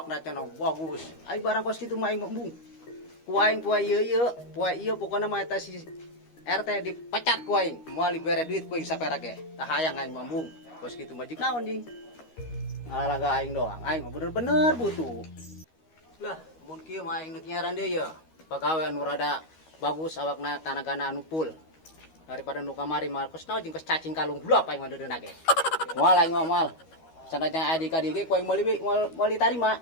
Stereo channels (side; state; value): right; late; 13 ms